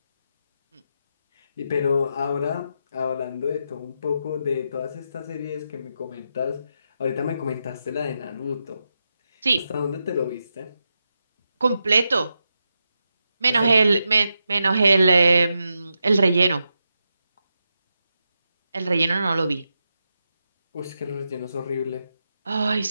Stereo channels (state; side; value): inverted; both; correlation -0.86